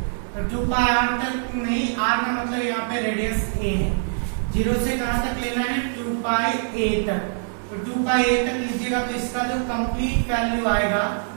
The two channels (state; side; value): silent; left; digital silence